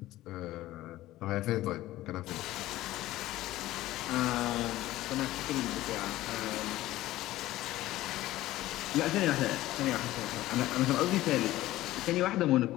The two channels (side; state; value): right; quieter; 16.0 dB